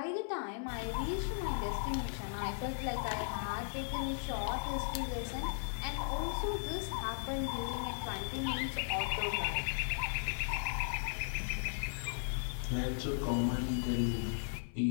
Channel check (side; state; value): right; silent; 53 dB below the other